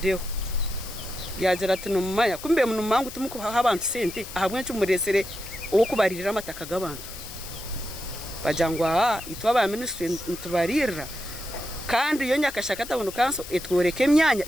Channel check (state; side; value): noise; left; hiss, 13 dB below the sound